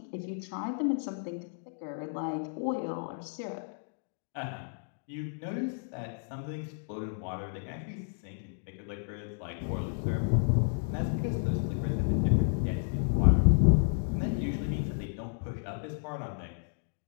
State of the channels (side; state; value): right; silent; digital silence